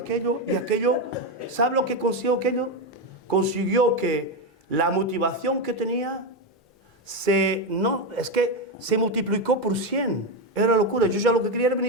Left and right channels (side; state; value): both; normal; correlation 0.10